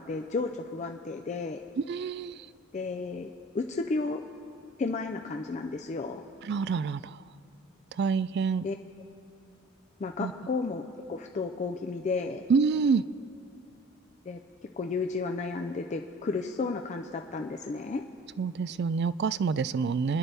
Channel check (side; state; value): both; normal; correlation 0.47